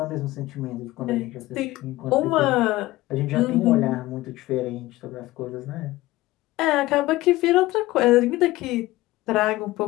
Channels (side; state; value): right; quieter; 17.9 dB